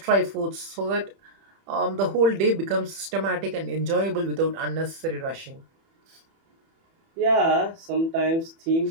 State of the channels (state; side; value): late; left; 31 ms